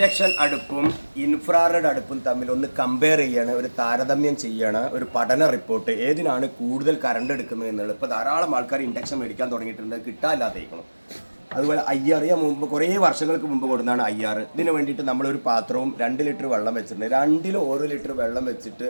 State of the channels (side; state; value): both; inverted; correlation -1.00